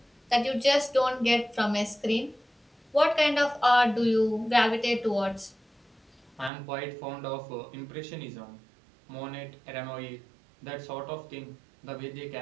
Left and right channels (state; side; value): drops out; left; at 6.5 s